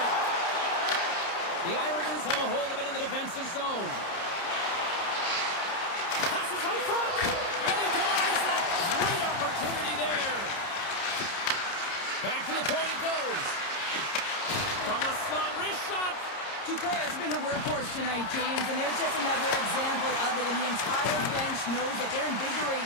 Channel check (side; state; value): right; late; 30 ms